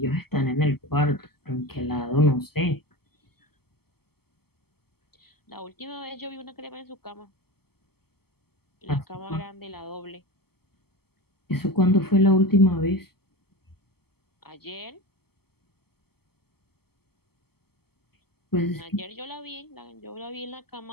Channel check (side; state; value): right; late; 0.96 ms